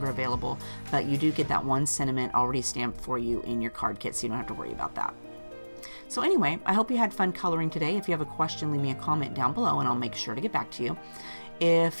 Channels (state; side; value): inverted; both; correlation -1.00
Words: available, but you do get that one sentiment already stamped for you in your card kit, so you don't have to worry about that. So anyway, I hope you had fun coloring today. If you have a question, leave me a comment down below and I'll make sure to get back to you.